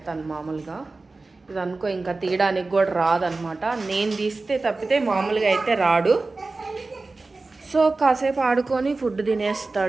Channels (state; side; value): quieter; left; 3.5 dB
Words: మామూలుగా. ఇది అనుకో ఇంకా తీయడానికి కూడా రాదనమాట. నేను తీస్తే తప్పితే మామూలుగా అయితే రాడు. సో కాసేపు ఆడుకొని ఫుడ్